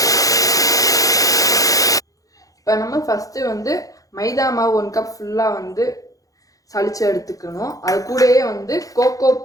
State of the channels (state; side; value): late; right; 0.17 ms